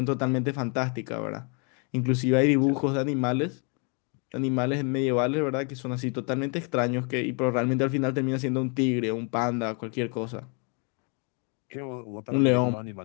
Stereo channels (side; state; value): right; quieter; 36.5 dB